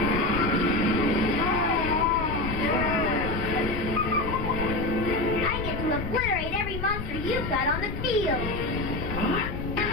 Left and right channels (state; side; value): noise; left; rumble, 6 dB below the sound